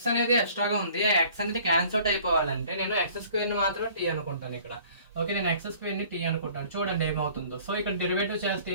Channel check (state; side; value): inverted; both; correlation -0.52